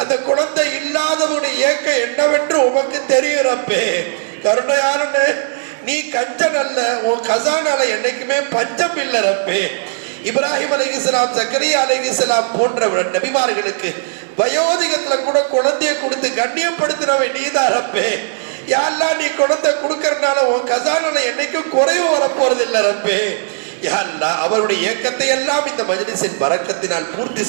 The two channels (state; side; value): silent; left; 65 dB below the other